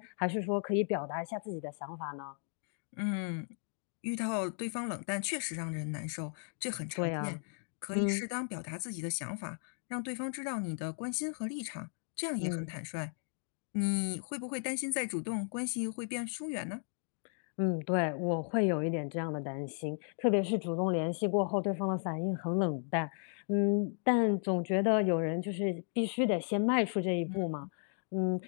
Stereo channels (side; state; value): right; silent; 54 dB below the other